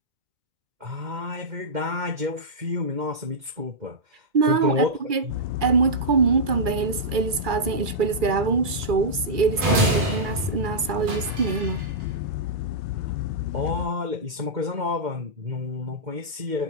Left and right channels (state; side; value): late; left; 2.3 ms